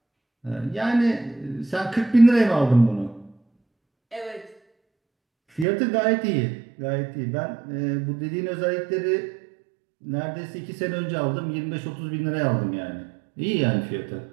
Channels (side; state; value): left; drops out; at 5.7 s